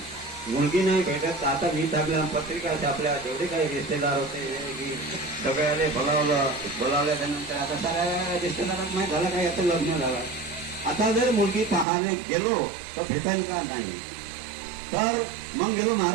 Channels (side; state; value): left; drops out; at 11.9 s